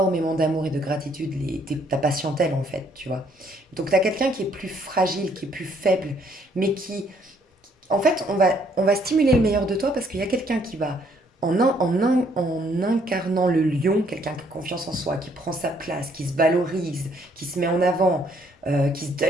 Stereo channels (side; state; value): both; normal; correlation 0.66